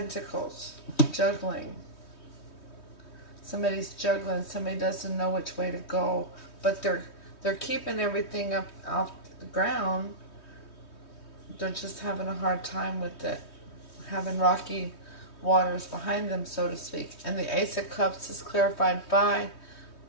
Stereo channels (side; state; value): right; late; 3.2 ms